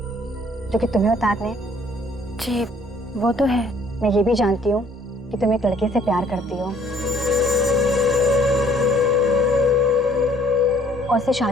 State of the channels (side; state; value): both; normal; correlation 0.60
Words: जो कि तुम्हें उतारने हैं? जी वो तो है। मैं ये भी जानती हूँ कि तुम एक लड़के से प्यार करती हो और उससे